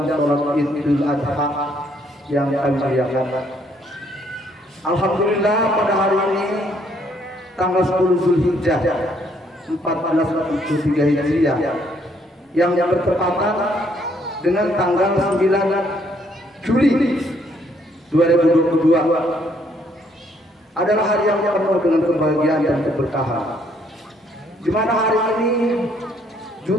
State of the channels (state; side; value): normal; both; correlation 0.68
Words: salat Idul Adha yang kami muliakan. Alhamdulillah pada hari ini tanggal 10 Zulhijjah 1443 Hijriah yang bertepatan dengan tanggal 9 Juli 2022 adalah hari yang penuh dengan kebahagiaan dan keberkahan, di mana hari ini